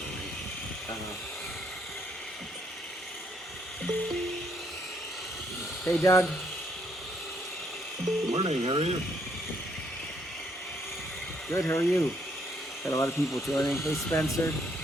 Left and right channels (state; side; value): normal; both; correlation 0.71